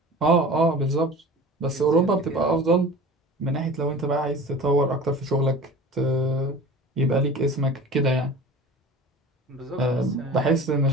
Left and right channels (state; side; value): normal; both; correlation 0.38